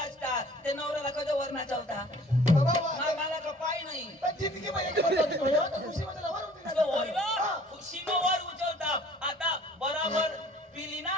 ते नवऱ्याला कधी वर नाचवता बाबा मला का पाय नाही पण जिंदगी मध्ये एक होती होती भैया तर खुशीमध्ये लवर होती तो होय ना ना, खुशीनं वर उचलता आता बराबर पिली ना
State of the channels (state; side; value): normal; both; correlation 0.51